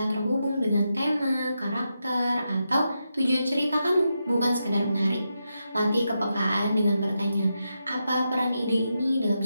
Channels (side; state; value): both; inverted; correlation -0.86